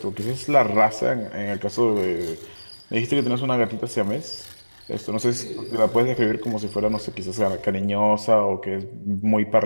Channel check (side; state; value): both; inverted; correlation -1.00